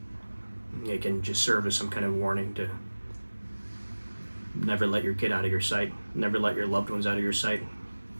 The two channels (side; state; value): both; inverted; correlation -1.00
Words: it can just serve as some kind of warning to never let your kid out of your sight, never let your loved ones out of your sight.